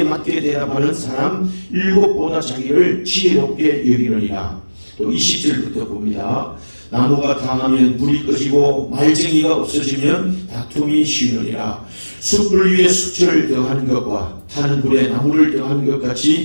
맞게 대답하는 사람 일곱보다 자기를 지혜롭게 여기느니라. 또 20절부터 봅니다. 나무가 당하면 불이 꺼지고 말쟁이가 없어지면 다툼이 쉬우느니라. 숯불 위에 숯을 더하는 것과 타는 불에 나무를 더하는 것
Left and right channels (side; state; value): both; inverted; correlation -1.00